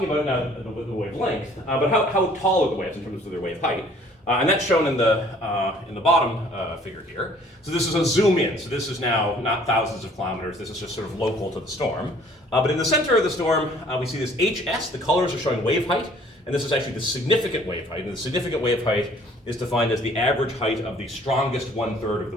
about now the wavelength, but how tall are the waves in terms of their wave height? And that's shown in the bottom figure here. So this is a zoom in. So this is now not thousands of kilometers. This is just sort of local to the storm. But in the center of the storm, we see this HS. The colors are showing wave height. And this is actually the significant wave height. And the significant wave height is defined as the average height of the strongest 1/3 of the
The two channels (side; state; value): both; normal; correlation 0.56